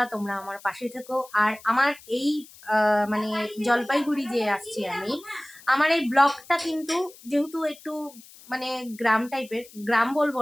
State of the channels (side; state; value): left; noise; hiss, 21 dB below the sound